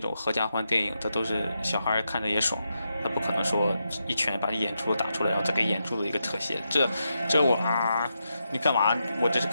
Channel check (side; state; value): both; inverted; correlation -0.85